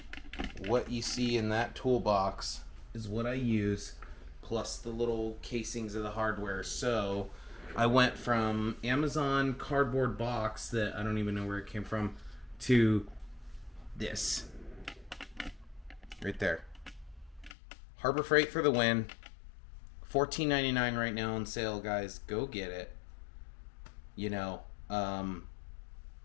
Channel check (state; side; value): drops out; right; at 17.5 s